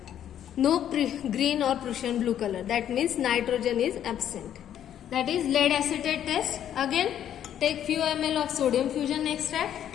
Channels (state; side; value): quieter; right; 10.3 dB